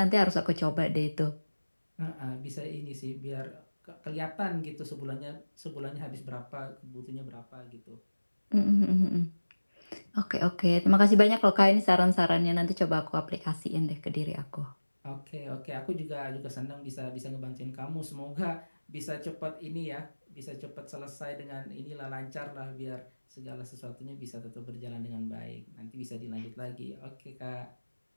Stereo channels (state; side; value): inverted; both; correlation -1.00